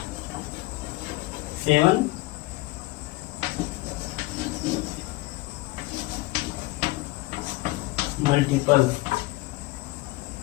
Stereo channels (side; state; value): right; quieter; 20.6 dB